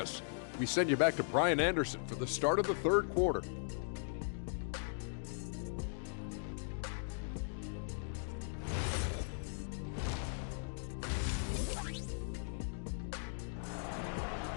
We send you back to Brian Anderson for the start of the third quarter.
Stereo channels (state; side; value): silent; right; digital silence